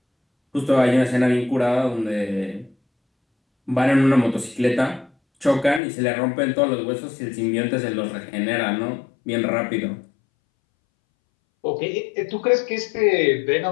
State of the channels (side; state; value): right; drops out; at 5.8 s